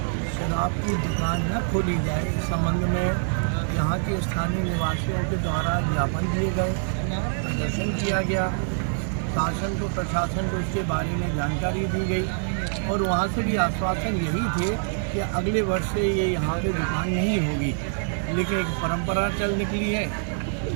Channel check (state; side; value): silent; left; digital silence